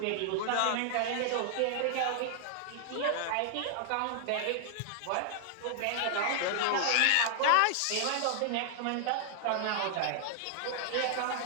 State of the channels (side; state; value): both; different; correlation -0.01